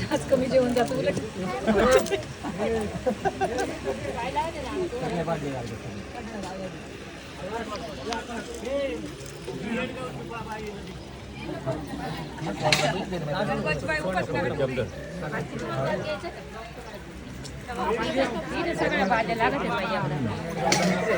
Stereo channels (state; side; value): identical; both; correlation 1.00